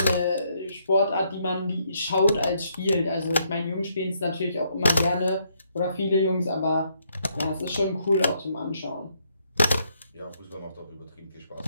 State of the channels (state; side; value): inverted; both; correlation -0.73